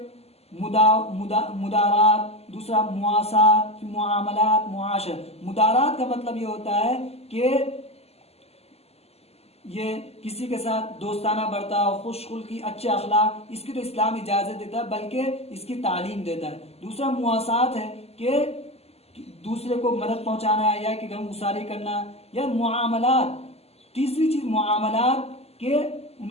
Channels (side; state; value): right; late; 0.29 ms